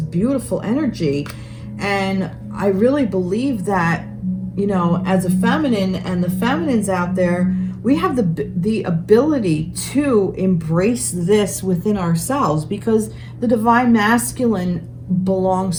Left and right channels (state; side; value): identical; both; correlation 1.00